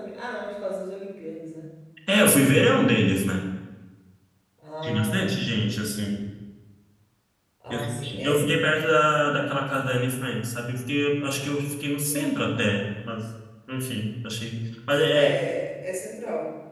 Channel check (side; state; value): both; identical; correlation 1.00